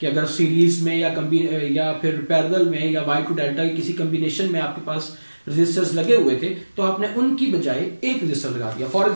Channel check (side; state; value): both; inverted; correlation -1.00